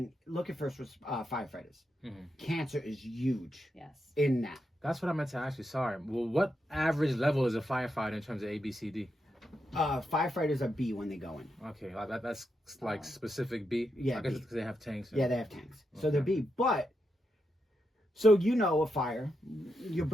look at firefighters. Mm-hmm. Cancer is huge Yes. in that. That's what I meant to ask you. Sorry. Well, what average level is a firefighter in terms of ABCD? Firefighters are B when they go in. Okay, like that's like specific B. Yeah, I guess B. it's because they have tanks. Yeah, they have tanks. So they're Okay. B. But, so you know a fire, you're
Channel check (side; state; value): both; normal; correlation 0.84